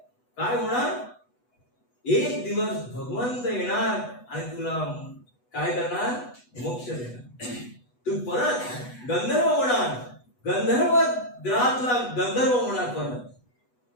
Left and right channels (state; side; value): late; right; 8.1 ms